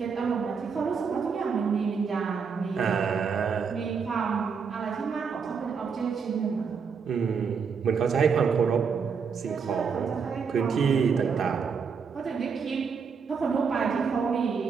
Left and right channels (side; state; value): left; quieter; 5.9 dB